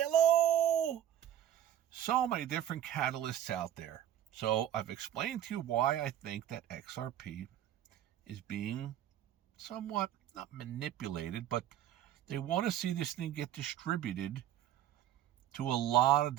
So many different catalysts out there. So I've explained to you why I think that XRP is being somewhat, not manipulated, but they want to see this thing get distributed to a lot of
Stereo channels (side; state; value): left; quieter; 11.3 dB